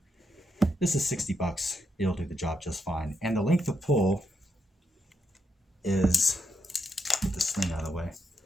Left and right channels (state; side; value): normal; both; correlation 0.82